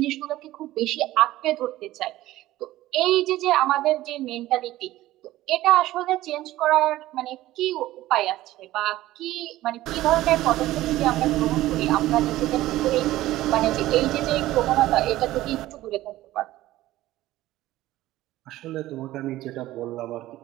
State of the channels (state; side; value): quieter; left; 15.9 dB